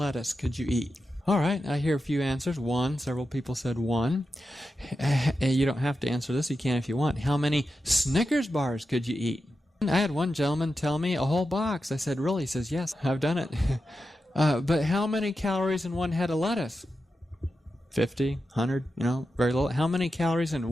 could you eat? All right, I hear a few answers. 1, several people said 1. You don't have to answer this, you can if you want. How many Snickers bars could you eat? I had one gentleman tell me a whole box. I said, really? He says, yes, I've done it. But how many calories in one head of lettuce? 50, 100, very little. How many calories in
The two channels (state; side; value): normal; both; correlation 0.90